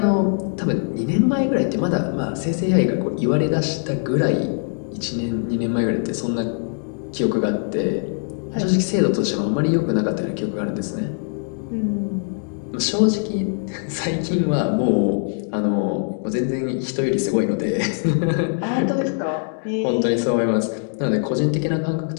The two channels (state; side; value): silent; right; 64 dB below the other